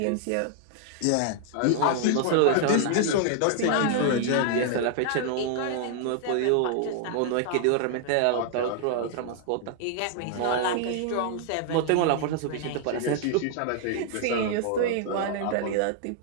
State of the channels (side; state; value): both; different; correlation 0.00